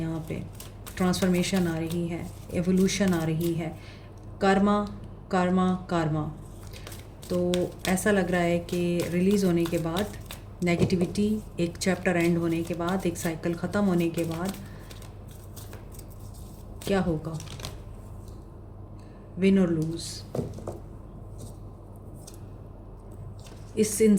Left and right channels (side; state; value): both; identical; correlation 1.00